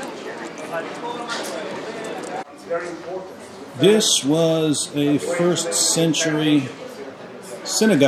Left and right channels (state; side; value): identical; both; correlation 1.00